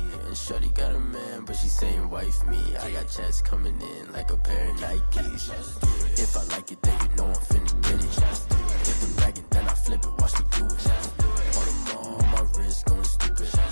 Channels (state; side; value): inverted; both; correlation -1.00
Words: And shorty got a man, but she saying wife me. I got checks coming in like a pair of Nikes. If I like it, then you know I'm finna get it. Get the bag and then I flip it, watch me do it. On them all, my wrist going stupid.